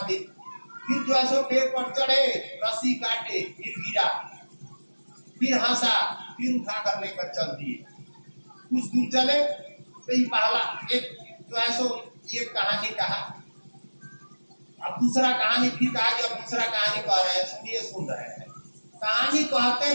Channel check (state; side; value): inverted; both; correlation -1.00